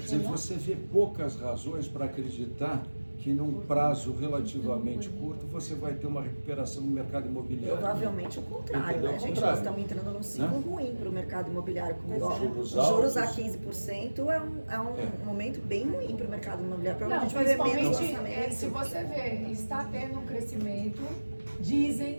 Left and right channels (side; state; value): both; inverted; correlation -1.00